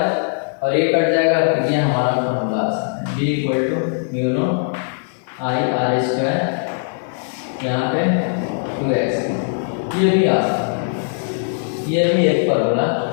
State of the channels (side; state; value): right; silent; 58 dB below the other